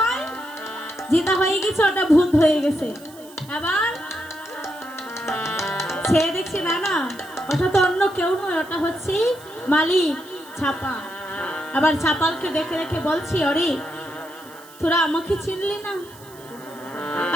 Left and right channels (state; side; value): noise; right; hiss, 22 dB below the sound